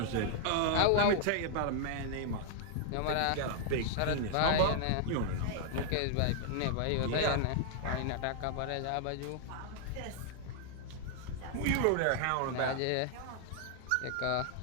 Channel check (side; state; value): both; different; correlation 0.00